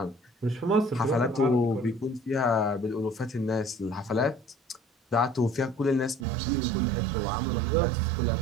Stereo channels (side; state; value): left; drops out; at 6.2 s